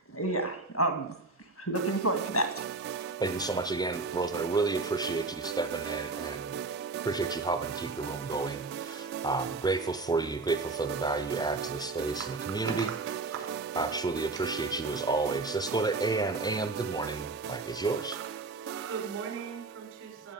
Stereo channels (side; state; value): left; quieter; 3.6 dB